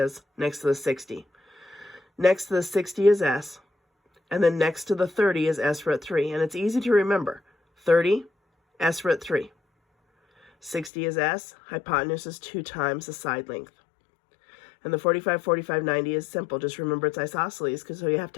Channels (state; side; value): drops out; right; at 10.9 s